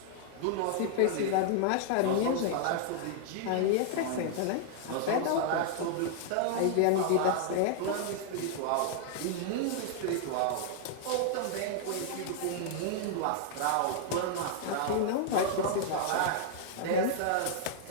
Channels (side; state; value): both; different; correlation -0.01